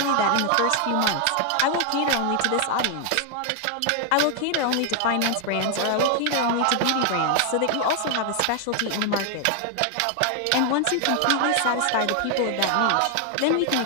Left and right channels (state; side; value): different; both; correlation 0.00